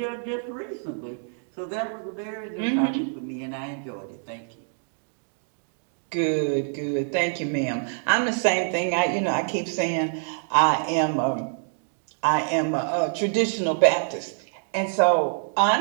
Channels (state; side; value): silent; left; digital silence